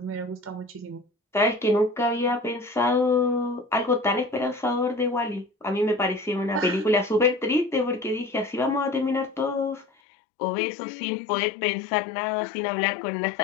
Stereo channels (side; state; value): right; drops out; at 9.9 s